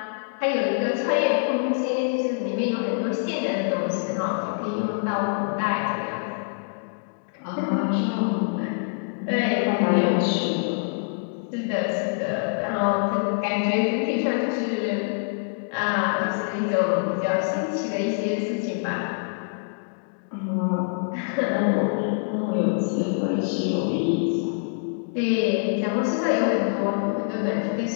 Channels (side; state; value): right; silent; digital silence